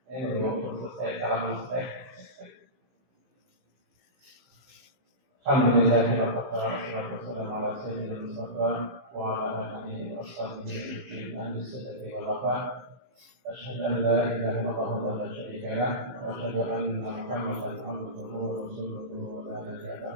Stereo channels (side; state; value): left; late; 15 ms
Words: Ini belum selesai, salam selesai. Alhamdulillah wassalatu wassalamu ala sayyidina Mustafa wa ala alihi wa sahbihi ahli sadaqati wal wafa. Asyhadu an la ilaha illallah wa la syarika lah wa asyhadu anna Muhammadan abduhu wa rasuluhu la ilaha